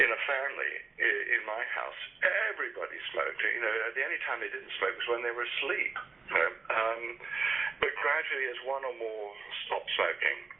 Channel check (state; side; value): quieter; left; 4.4 dB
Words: a family, in my house, everybody smoked. You know, the only time they didn't smoke was when they were asleep. You know? But gradually, as one or more stopped smoking,